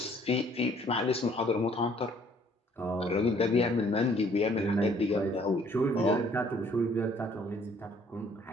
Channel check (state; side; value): normal; both; correlation 0.61